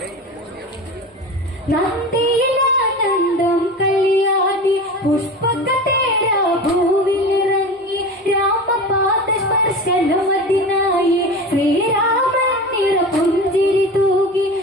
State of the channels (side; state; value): both; normal; correlation 0.31